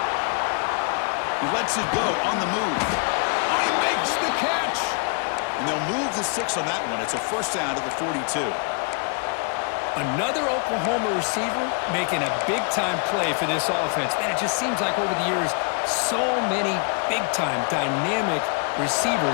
He lets it go on the move. Oh, he makes the catch. And they'll move the 6 on that one. It's a first down to the 42. Another Oklahoma receiver making a big-time play for this offense. Man, it just seems like over the years, so many big-time, dynamic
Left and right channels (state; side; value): quieter; right; 39.2 dB